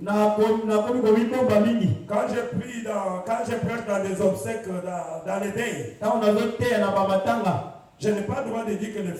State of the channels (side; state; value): both; identical; correlation 1.00